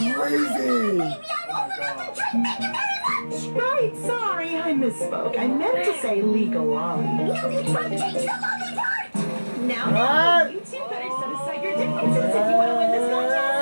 crazy! Maybe I'm old enough to drink. Thank you very much! Right, sorry, I misspoke. I meant to say legal lolly. No, you tried to change the lolly part! Now, you two better set aside your differences if you want to win this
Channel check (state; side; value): inverted; both; correlation -1.00